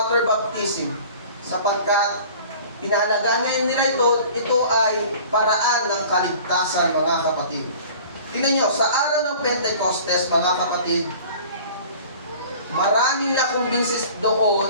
baptism, sapagkat pinahalagaan ngayon nila ito ay paraan ng kaligtasan, mga kapatid. Tingnan niyo, sa araw ng Pentecostes, mga kapatid, maraming nakumbinsis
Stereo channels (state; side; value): inverted; both; correlation -0.45